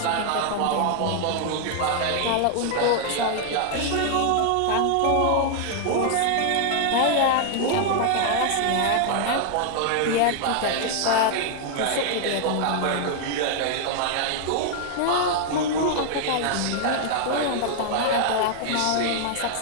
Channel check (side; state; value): both; different; correlation 0.00